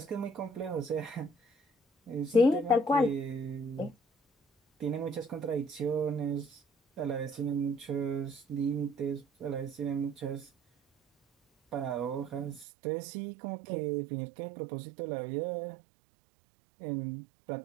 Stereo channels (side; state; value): left; drops out; at 12.7 s